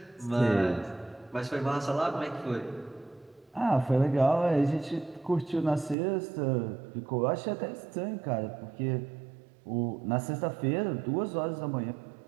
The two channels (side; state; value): left; drops out; at 6.0 s